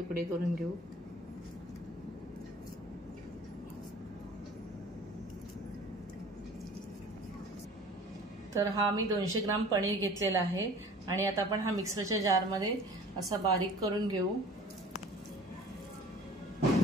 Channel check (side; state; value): both; normal; correlation 0.46